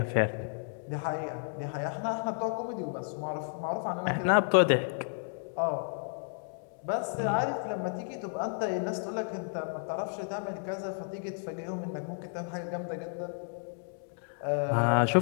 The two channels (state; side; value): silent; right; 56 dB below the other